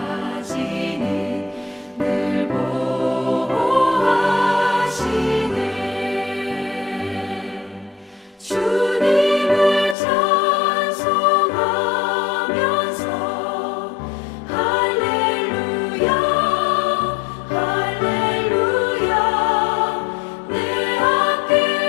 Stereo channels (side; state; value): right; drops out; at 10.0 s